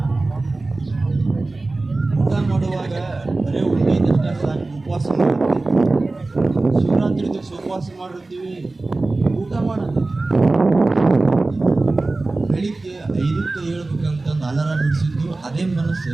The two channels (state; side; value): quieter; left; 3.3 dB